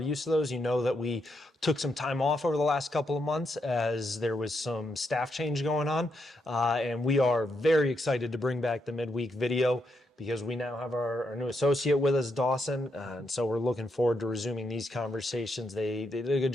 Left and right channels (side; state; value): both; normal; correlation 0.80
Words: to those, you know that we took some time off over the last couple of months as there was some staff change going on. And we are very excited to bring back the midweek video because we now have our new associate with us, Dawson. And so we're looking forward to resuming these conversations. They did a good